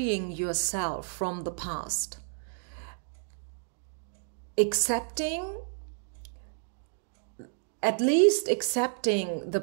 yourself from the past. Accepting, at least accepting the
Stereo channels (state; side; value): silent; left; 57 dB below the other